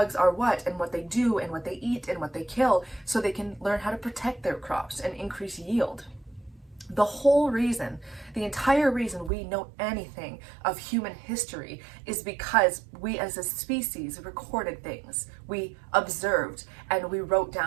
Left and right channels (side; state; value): left; drops out; at 9.3 s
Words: are what and what they do and what they eat and what they kill, so they can learn how to protect their crops and increase yield. The whole reason, the entire reason we know anything of human history is because we as a species recorded things. We observed and we wrote